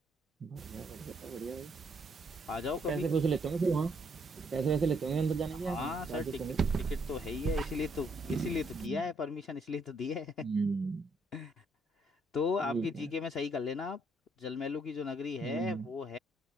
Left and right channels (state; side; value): normal; both; correlation 0.71